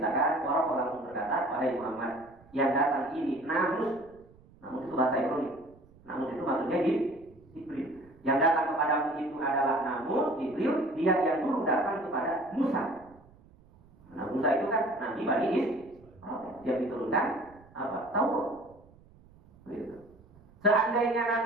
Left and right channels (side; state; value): right; noise; rumble, 26 dB below the sound